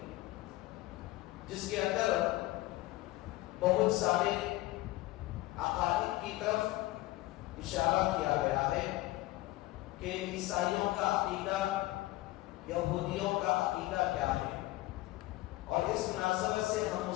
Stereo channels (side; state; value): right; quieter; 18.1 dB